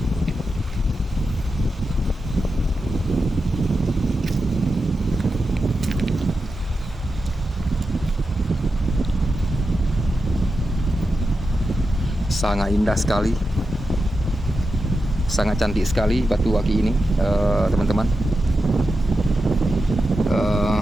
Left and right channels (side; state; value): both; normal; correlation 0.90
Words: Sangat indah sekali, sangat cantik sekali batu aki ini, teman-teman.